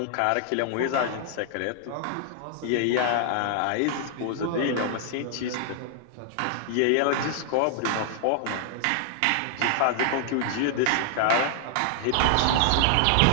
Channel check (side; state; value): both; different; correlation 0.00